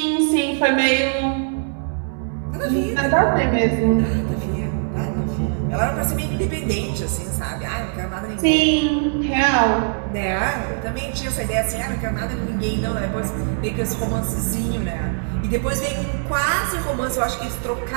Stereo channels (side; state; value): left; silent; digital silence